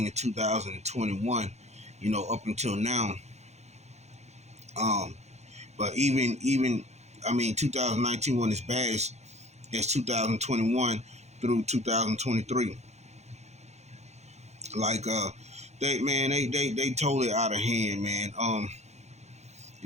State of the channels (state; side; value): late; left; 0.32 ms